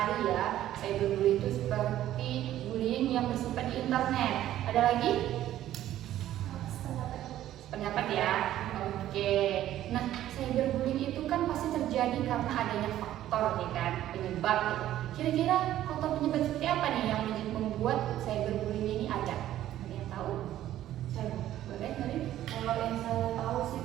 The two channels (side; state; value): left; quieter; 12.9 dB